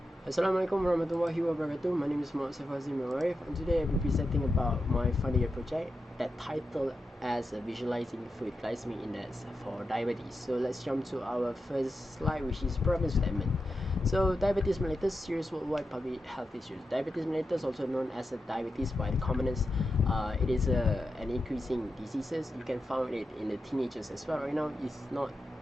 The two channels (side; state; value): both; normal; correlation 0.89